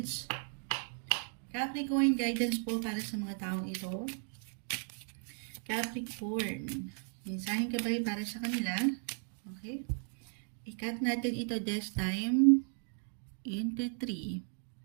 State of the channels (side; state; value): left; silent; 54 dB below the other